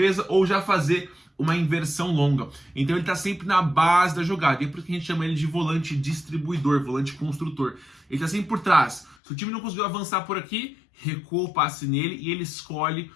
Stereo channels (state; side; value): drops out; right; at 9.2 s